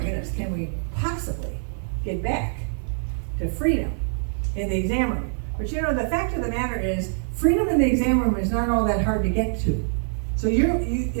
can we possibly get back to freedom in the exam room? But you know, the fact of the matter is, freedom in the exam room is not all that hard to get to. So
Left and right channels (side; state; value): left; silent; 56 dB below the other